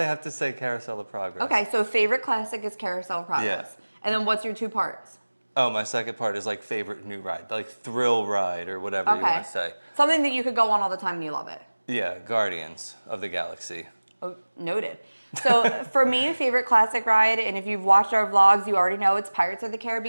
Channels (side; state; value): both; inverted; correlation -1.00